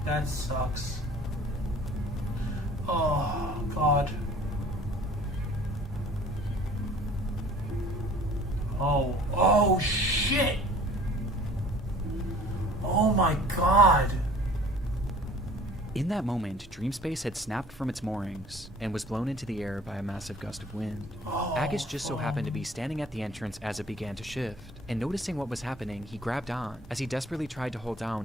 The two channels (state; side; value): normal; both; correlation 0.49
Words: That sucks. Oh, God. Oh, shit. Oh my God. In that moment, Dreamspace had snapped from its moorings and was blown into the air by a massive gust of wind. Agus just so happened to be standing at the entrance as it began to shift, and noticing what was happening, he grabbed on as he desperately tried to hold down